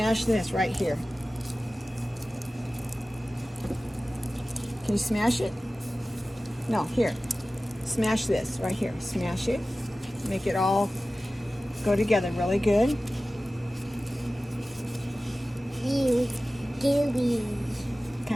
this right here. Can you smash it? No, here. Smash this right here. Smash it. Make it all go together really good. Gooey.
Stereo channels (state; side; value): normal; both; correlation 0.96